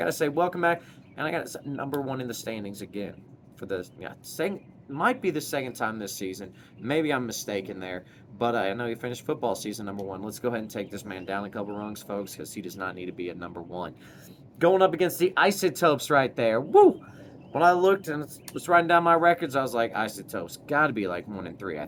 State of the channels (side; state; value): both; identical; correlation 1.00